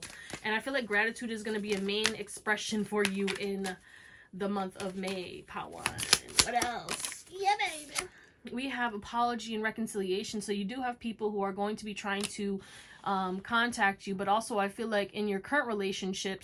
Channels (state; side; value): identical; both; correlation 1.00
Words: And I feel like gratitude is going to be a main expression for you in the month of May, Pawan. What else? Yeah, baby. We have apology and reconciliation. So you do have people who are going to be trying to contact you, but also I feel like in your current